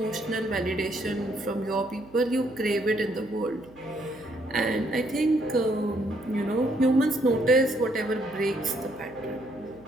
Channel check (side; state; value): right; noise; hum, 26 dB below the sound